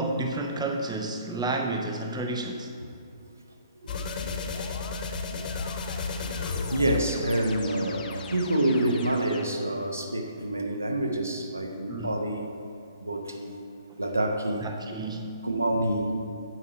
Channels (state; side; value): inverted; both; correlation -0.64